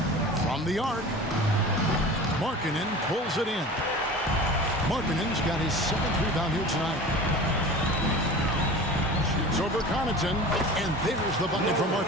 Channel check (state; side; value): normal; both; correlation 0.37